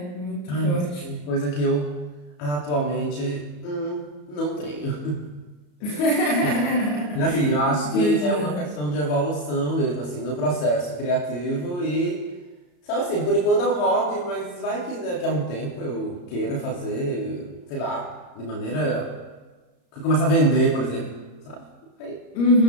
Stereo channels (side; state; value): right; late; 34 ms